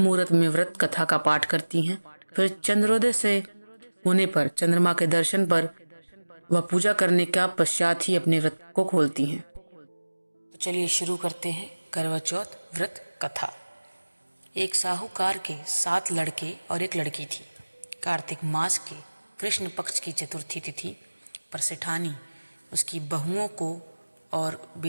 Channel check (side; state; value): both; inverted; correlation -1.00